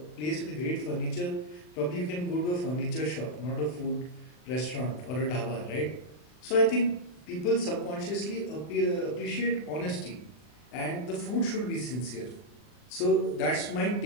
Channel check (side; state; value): right; late; 40 ms